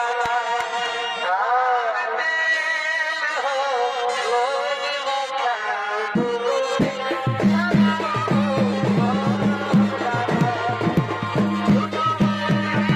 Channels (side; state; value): both; identical; correlation 1.00